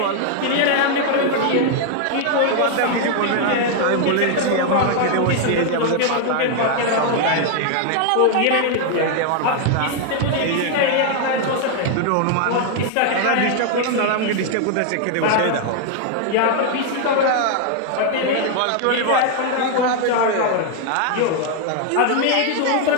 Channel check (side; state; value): both; different; correlation 0.00